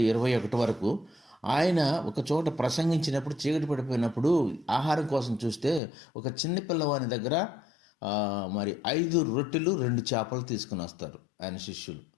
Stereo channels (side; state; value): right; drops out; at 5.8 s